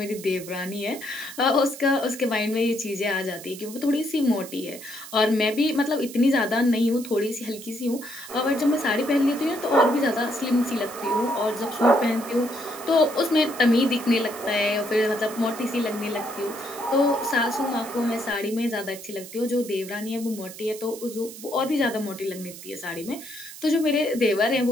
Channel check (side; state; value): right; noise; hiss, 14 dB below the sound